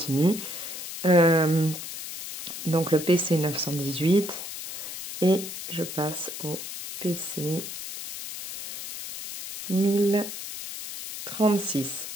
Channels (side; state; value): left; noise; hiss, 8 dB below the sound